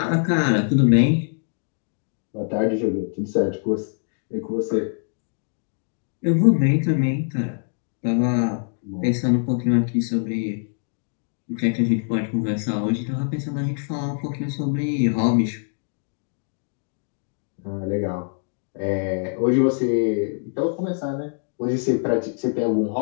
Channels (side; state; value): right; silent; digital silence